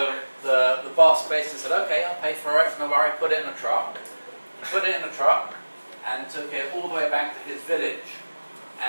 the boss basically said, okay, I'll pay for it, no worry, put it in a truck. He put it in a truck and took it all the way back to his village.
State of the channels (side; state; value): both; inverted; correlation -1.00